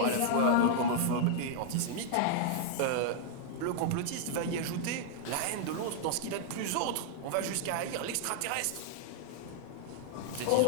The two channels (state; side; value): different; both; correlation -0.01